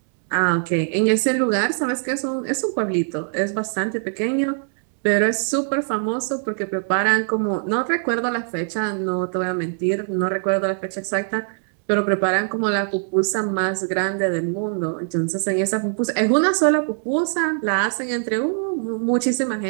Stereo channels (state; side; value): silent; left; 63 dB below the other